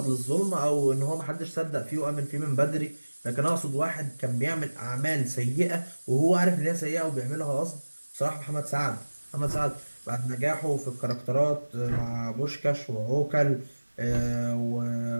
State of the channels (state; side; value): inverted; both; correlation -1.00